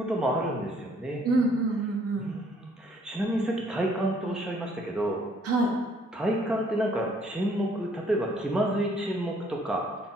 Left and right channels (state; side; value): normal; both; correlation 0.63